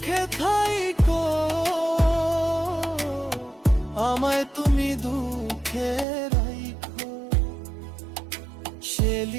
থাইকো, আমায় তুমি দুঃখে রাইখো।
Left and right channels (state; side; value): drops out; left; at 6.1 s